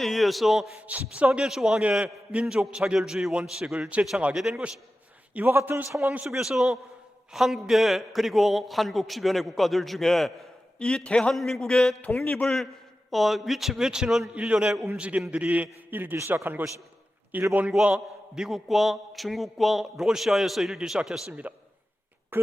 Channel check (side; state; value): both; normal; correlation 0.94